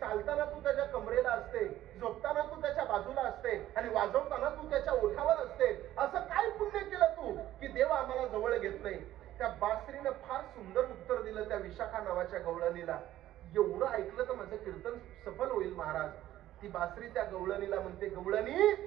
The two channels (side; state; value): left; quieter; 13.7 dB